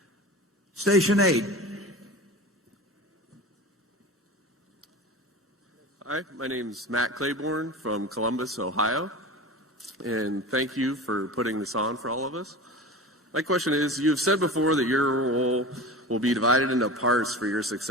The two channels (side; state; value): both; normal; correlation 0.32